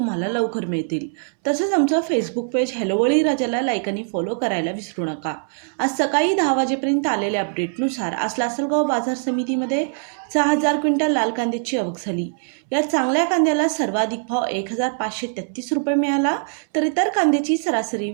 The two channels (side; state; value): left; silent; 64 dB below the other